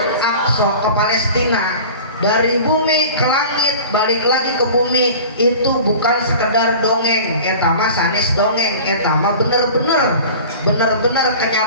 Aqsa, ke Palestina. Dari bumi ke langit, balik lagi ke bumi. Itu bukan sekedar dongeng, etama sanes dongeng, etama bener-bener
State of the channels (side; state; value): both; inverted; correlation -0.39